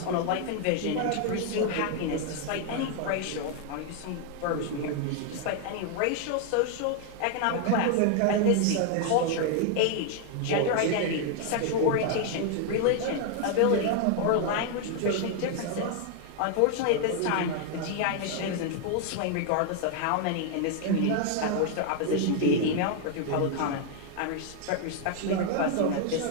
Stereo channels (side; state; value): both; different; correlation 0.00